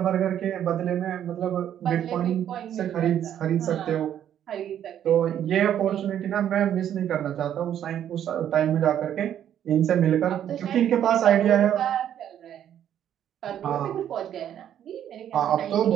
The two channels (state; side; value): quieter; left; 10.3 dB